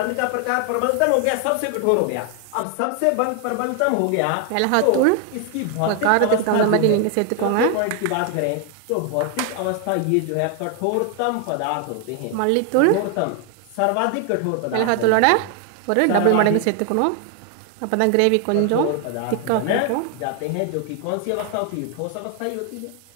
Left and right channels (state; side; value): different; both; correlation 0.01